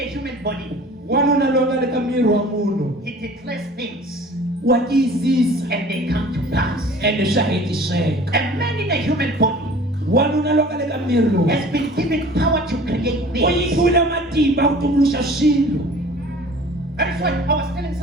human body, Wanuna longa le ka miri wa munhu. he declares things Wa tiyisisa and they come to pass. ende swa hetiseka. A man in a human body Wanuna longa le ka miri lowu. has been given power to create U things. nyikiwile matimba ku tumbuluxa swilo. That is why I was telling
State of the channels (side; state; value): both; normal; correlation 0.46